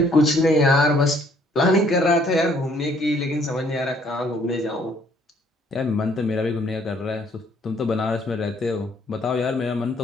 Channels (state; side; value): normal; both; correlation 0.63